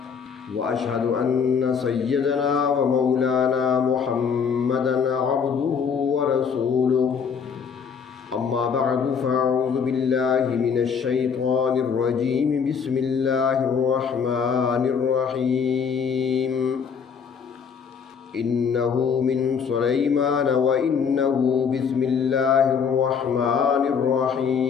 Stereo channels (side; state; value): right; quieter; 6.5 dB